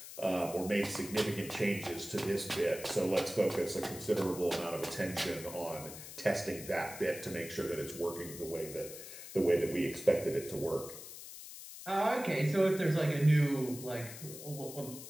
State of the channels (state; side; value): noise; left; hiss, 12 dB below the sound